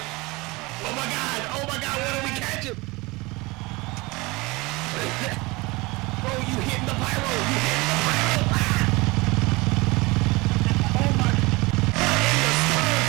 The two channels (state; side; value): quieter; left; 23.7 dB